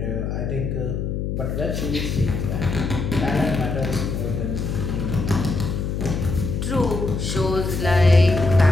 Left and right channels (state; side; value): noise; left; hum, 2 dB below the sound